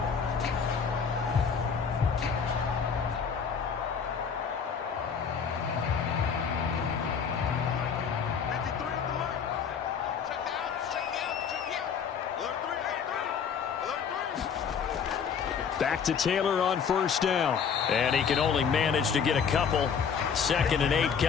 back to Taylor on first down. And he can only manage to get a couple. 2nd and 8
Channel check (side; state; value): right; quieter; 6.7 dB